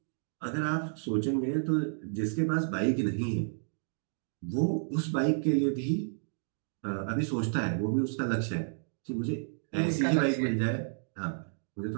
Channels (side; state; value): left; silent; digital silence